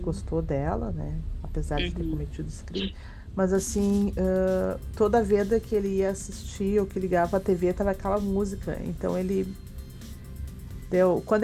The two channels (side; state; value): both; identical; correlation 1.00